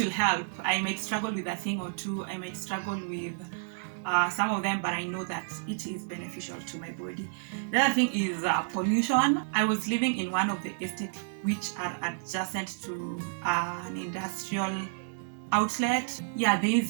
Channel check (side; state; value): left; silent; digital silence